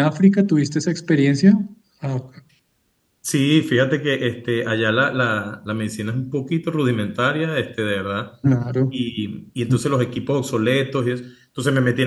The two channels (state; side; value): identical; both; correlation 1.00